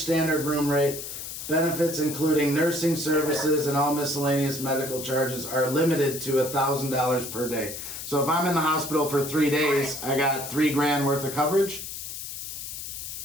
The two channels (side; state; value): left; noise; hiss, 8 dB below the sound